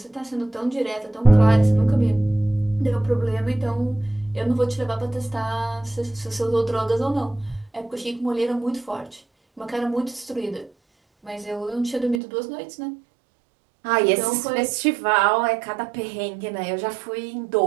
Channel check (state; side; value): drops out; left; at 12.2 s